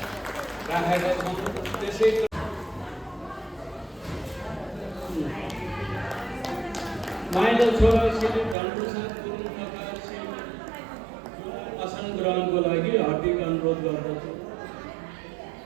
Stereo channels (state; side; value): drops out; left; at 8.6 s